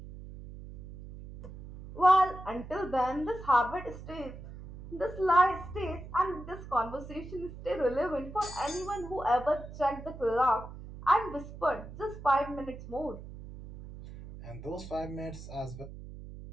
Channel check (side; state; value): right; noise; hum, 13 dB below the sound